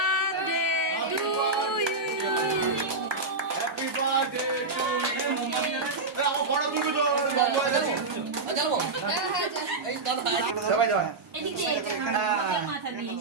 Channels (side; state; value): left; quieter; 3.5 dB